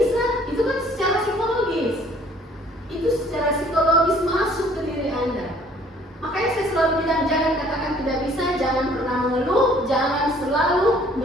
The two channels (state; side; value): normal; both; correlation 0.57